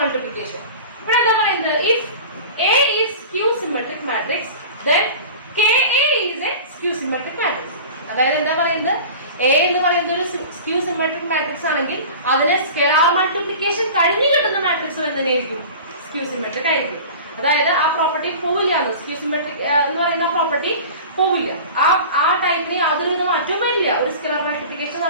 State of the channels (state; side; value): inverted; both; correlation -0.37